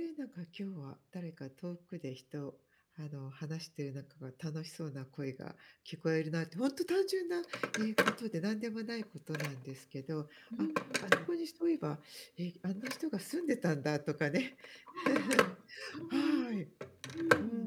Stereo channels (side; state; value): both; identical; correlation 1.00